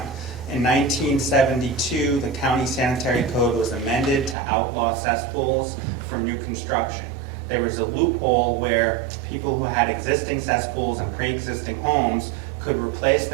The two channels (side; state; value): left; drops out; at 4.4 s